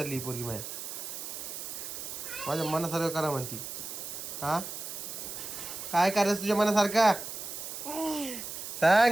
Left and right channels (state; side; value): noise; right; hiss, 7 dB below the sound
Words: ही पोरगी. माझ्या मनासारखं करा म्हणती. हा काय करायचं तुझ्या मनासारखा